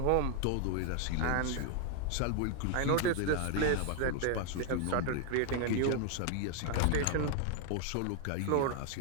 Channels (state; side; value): different; both; correlation 0.00